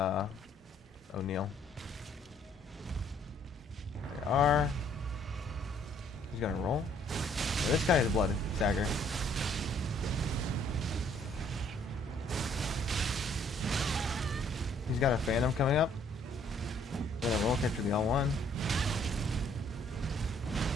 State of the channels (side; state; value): both; normal; correlation 0.63